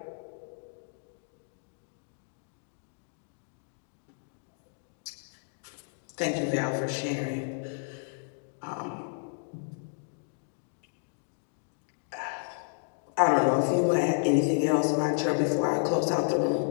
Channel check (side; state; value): right; silent; digital silence